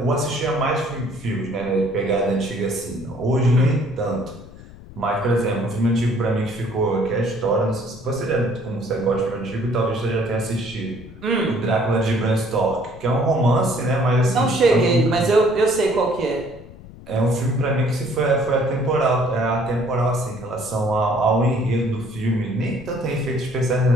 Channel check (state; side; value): noise; left; rumble, 18 dB below the sound